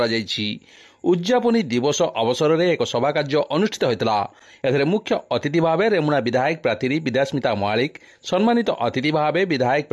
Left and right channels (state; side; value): identical; both; correlation 1.00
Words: ଉଦ୍ଯାପନୀ ଦିବସ ଅବସରରେ ଏକ ସଭା କାର୍ଯ୍ୟ ଅନୁଷ୍ଠିତ ହୋଇଥିଲା। ଏଥିରେ ମୁଖ୍ୟ ଅତିଥି ଭାବେ ରେମୁଣା ବିଧାୟକ ପ୍ରାର୍ଥୀ ବିଦ୍ୟାସ୍ମିତା ମହାଳିକ, ସମ୍ମାନିତ ଅତିଥି ଭାବେ ବିଧାୟକ